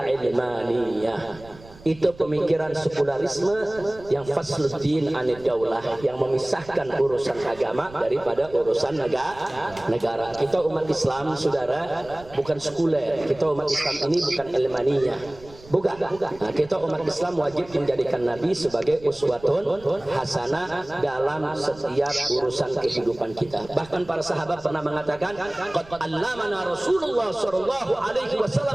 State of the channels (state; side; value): noise; right; rumble, 21 dB below the sound